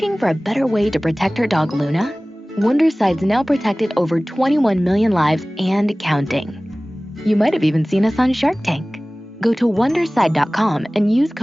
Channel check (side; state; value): both; normal; correlation 0.98